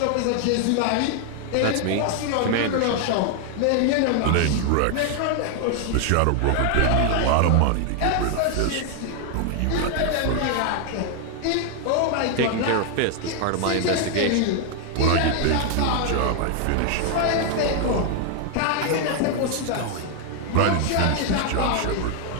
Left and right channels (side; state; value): both; different; correlation 0.00